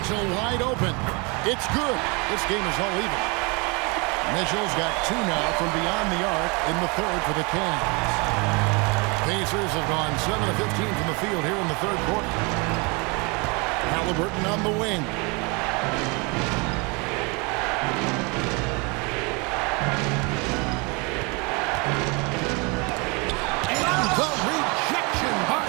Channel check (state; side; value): quieter; left; 29.5 dB